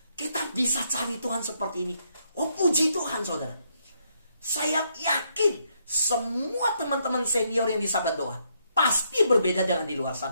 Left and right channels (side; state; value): both; inverted; correlation -0.75